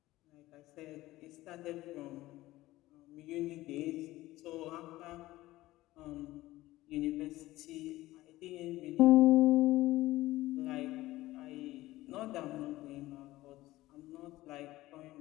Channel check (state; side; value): quieter; right; 17.2 dB